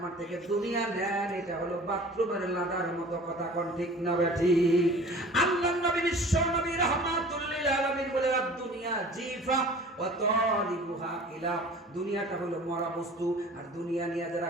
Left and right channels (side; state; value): both; normal; correlation 0.44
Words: থেকে দুনিয়া নেন, এটা হলো বাথরুমের লাদার মতো। কথা কোন ঠিক না ঠিক? আল্লাহর নবী বিশ্ব নবী রাহমাতুল লিল আলামিন বলে, দুনিয়া জিফা ওয়া তালিবুহা কিলাব, দুনিয়াটা হলো মরা বস্তু, আর দুনিয়া নিয়ে যারা